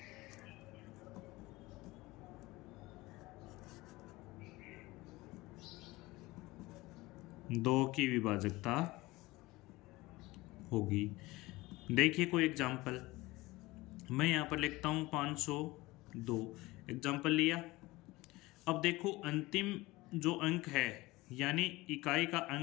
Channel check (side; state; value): right; quieter; 20.4 dB